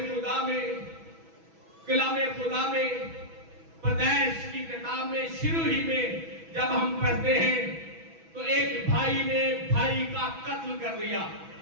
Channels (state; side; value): late; left; 6.1 ms